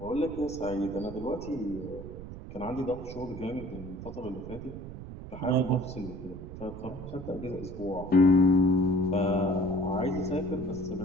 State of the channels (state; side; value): noise; right; rumble, 11 dB below the sound